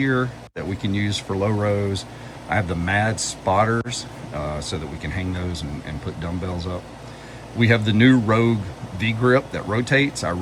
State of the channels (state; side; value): identical; both; correlation 1.00